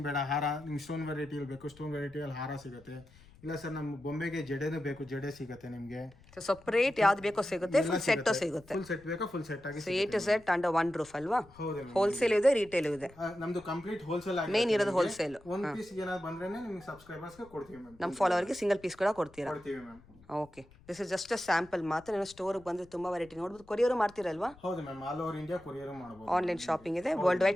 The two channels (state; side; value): noise; left; rumble, 25 dB below the sound